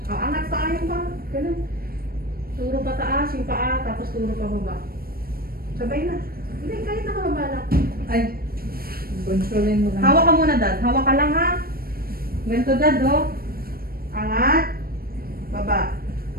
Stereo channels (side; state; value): left; late; 0.44 ms